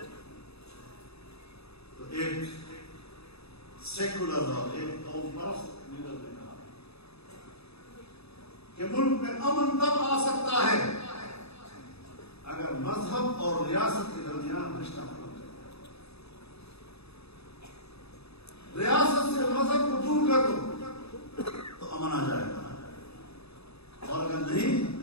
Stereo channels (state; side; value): late; right; 0.79 ms